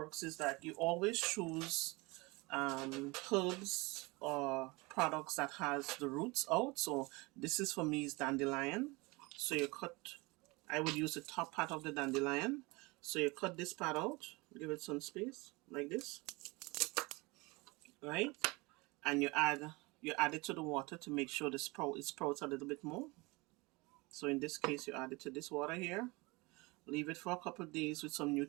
is that you always choose herbs or products that has the roots out. So this is for me is dandelion. So you cut, I would use the top part of the dandelion. So you cut this part out, give it some space like this, right? And you add it to the water to make sure the it sprouts a little bit more. So in this case, you add it to this water here. Leave it for a couple of days with some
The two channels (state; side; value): quieter; left; 24.9 dB